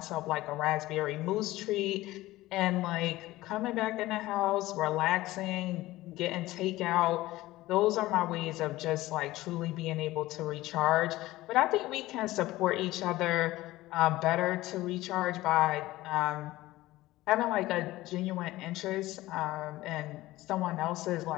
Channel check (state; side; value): quieter; right; 17.4 dB